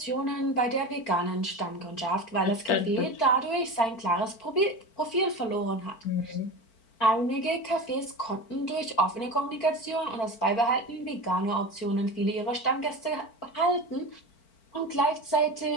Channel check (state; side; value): late; right; 4.5 ms